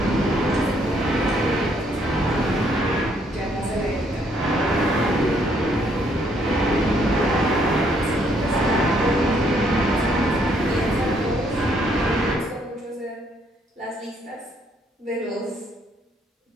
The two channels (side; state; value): both; normal; correlation 0.69